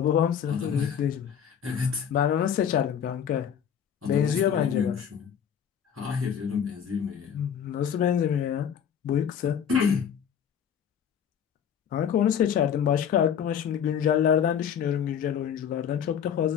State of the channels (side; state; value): right; quieter; 8.3 dB